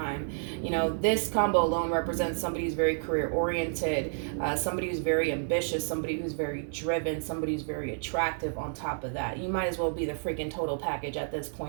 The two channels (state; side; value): silent; left; digital silence